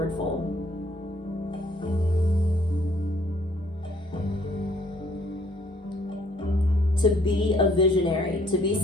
fold. To be a visionary, to be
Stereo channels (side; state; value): both; normal; correlation 0.63